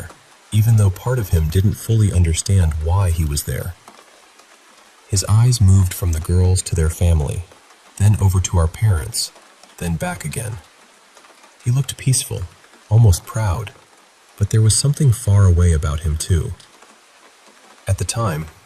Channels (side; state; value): both; identical; correlation 1.00